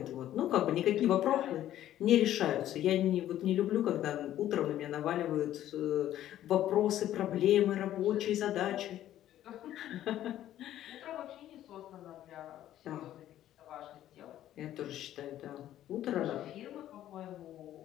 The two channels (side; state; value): right; quieter; 12.5 dB